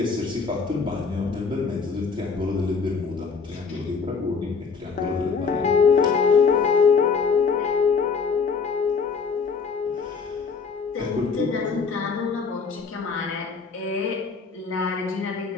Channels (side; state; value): right; quieter; 5.2 dB